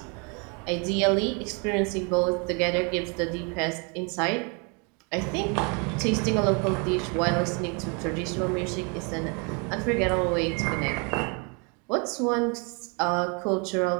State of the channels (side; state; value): left; quieter; 33.7 dB